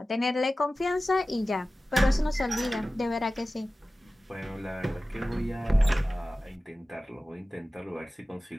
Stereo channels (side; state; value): both; normal; correlation 0.96